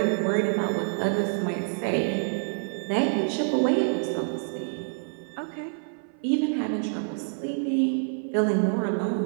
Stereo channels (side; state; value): left; silent; 56 dB below the other